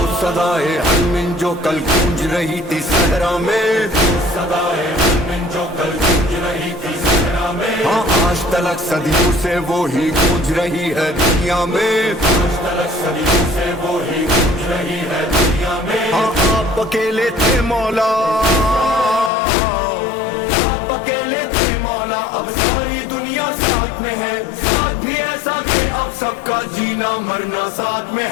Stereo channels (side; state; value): right; drops out; at 19.3 s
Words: सदाए हरमिन जो कल गूंज रही थी सहरा में, सदाए हरमिन जो कल गूंज रही थी सहरा में, हाँ आज तलक सदियों से वो ही गूंज रही है दुनिया में, आज तलक सदियों से वो ही गूंज रही है दुनिया में। हाँ आप अकेले थे मौला, आप अकेले थे मौला, अब सारी दुनिया साथ में है, साथ भी ऐसा कि अब सबका जीना मरना साथ में